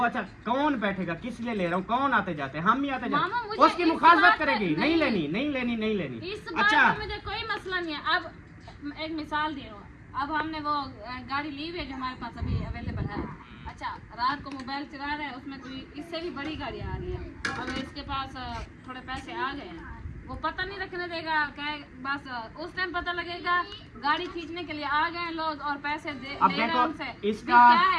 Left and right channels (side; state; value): both; identical; correlation 1.00